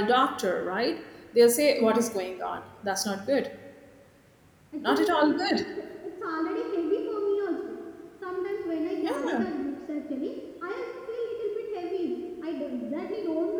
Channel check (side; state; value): both; identical; correlation 1.00